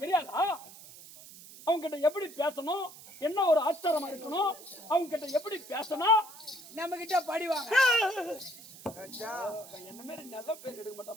தெரியாதா? அவங்க கிட்ட எப்படி பேசணும், என்ன ஒரு ஆச்சாரமா இருக்கணும், அவங்க கிட்ட எப்படி பேசணும், நம்ம கிட்ட படிவாங்க. என்ன மாதிரி நல்ல பேர் எடுக்க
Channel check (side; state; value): right; noise; hiss, 17 dB below the sound